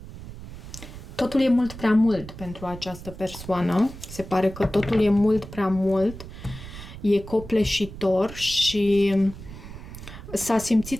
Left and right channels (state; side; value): noise; right; rumble, 13 dB below the sound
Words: totul e mult prea mult pentru această persoană. Se pare că totul e mult prea mult. E copleșitor și s-a